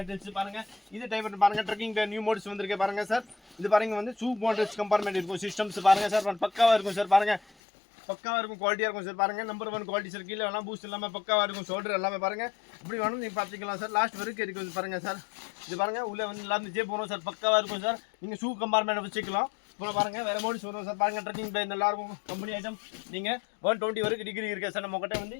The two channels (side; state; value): right; drops out; at 7.4 s